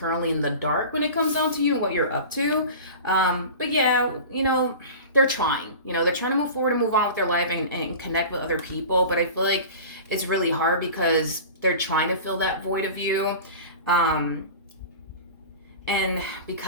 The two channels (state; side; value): inverted; both; correlation -0.35